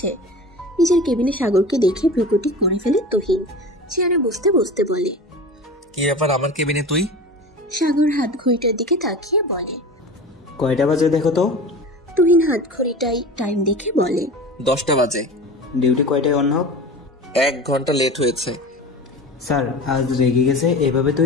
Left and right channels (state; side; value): normal; both; correlation 0.33